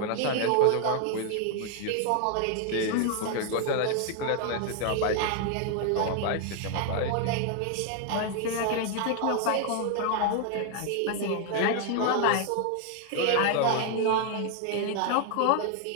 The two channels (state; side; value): different; both; correlation 0.00